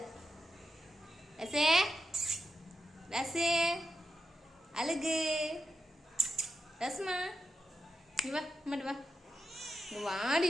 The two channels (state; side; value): normal; both; correlation 0.88